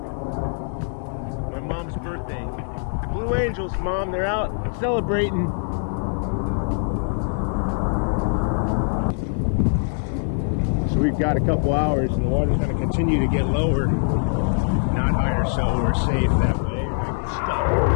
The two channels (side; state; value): right; silent; 63 dB below the other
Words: my mom's birthday. The Blue Angels, Mom, they're out celebrating. We've got a couple hours and the water's going to continue to get lower, not higher, so we're safe that way.